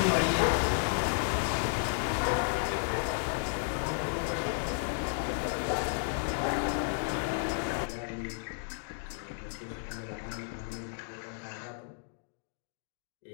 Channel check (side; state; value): right; silent; digital silence